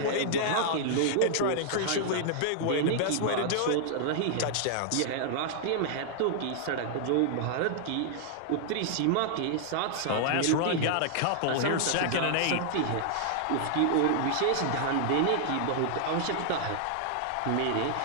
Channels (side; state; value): both; different; correlation -0.01